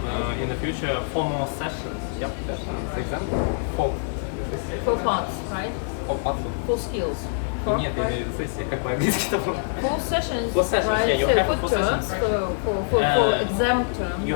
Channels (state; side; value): silent; right; digital silence